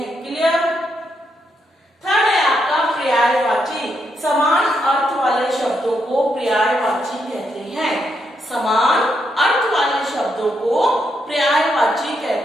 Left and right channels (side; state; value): both; normal; correlation 0.79